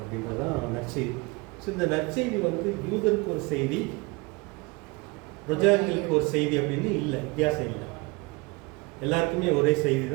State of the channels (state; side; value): quieter; left; 26.1 dB